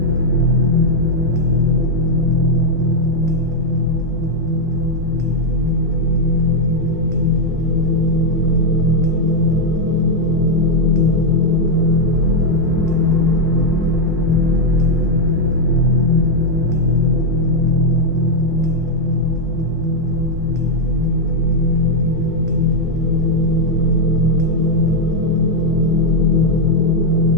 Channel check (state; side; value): normal; both; correlation 0.01